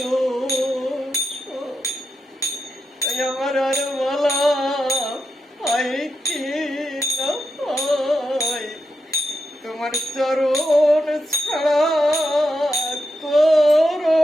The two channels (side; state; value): both; normal; correlation 0.87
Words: সব। তাই আমার আর বলা হয় কি না হয় তোমার চরণ ছাড়া